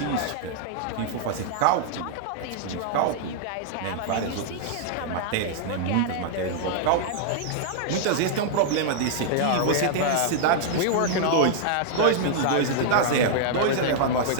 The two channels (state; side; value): different; both; correlation -0.01